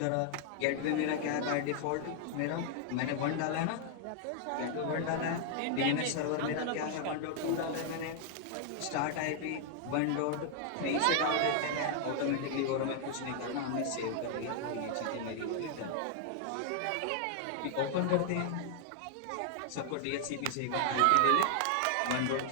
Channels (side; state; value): both; different; correlation 0.00